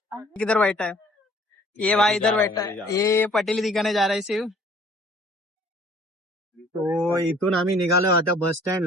किधर बैठा है ये भाई, इधर बैठा है ये पटेली दिखाने जा रहा है शिव. तो इथून आम्ही निघालो आता बस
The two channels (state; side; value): normal; both; correlation 0.55